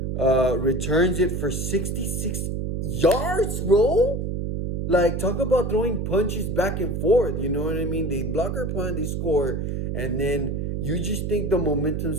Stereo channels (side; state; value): right; noise; hum, 2 dB below the sound